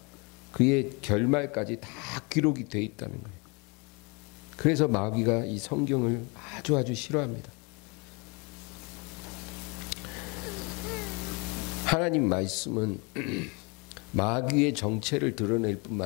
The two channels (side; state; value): right; quieter; 30.6 dB